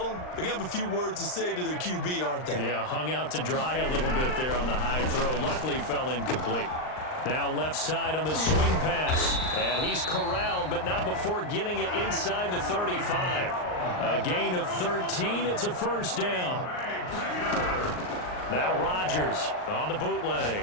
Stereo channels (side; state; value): right; late; 39 ms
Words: they're going to have a few words to say to their QB, aren't they? Yeah, hung out to dry a little bit there on the high throw. Luckily fell incomplete. Now left side on the swing pass, and he's corralled, but not before getting it inside the 35. A gain of 13, it's a first down. Now Rodgers on the bootleg.